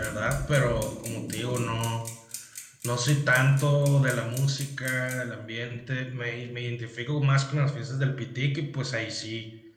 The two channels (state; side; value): identical; both; correlation 1.00